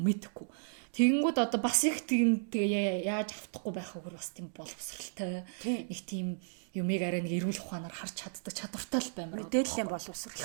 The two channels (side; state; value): left; silent; digital silence